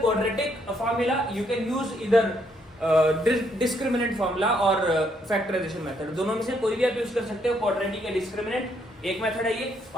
formula, you can use इधर डिस्क्रिमिनेंट फॉर्मूला और फैक्टराइजेशन मेथड। दोनों में से कोई भी आप यूज कर सकते हो। क्वाड्रेटिक या डिस्क्रिमिनेंट एक मेथड है ये,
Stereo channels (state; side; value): normal; both; correlation 0.72